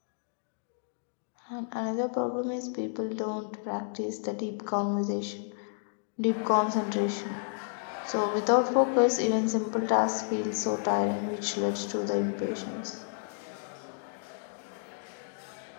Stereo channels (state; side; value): silent; right; digital silence